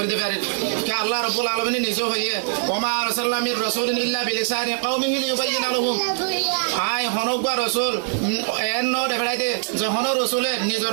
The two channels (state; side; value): silent; left; 63 dB below the other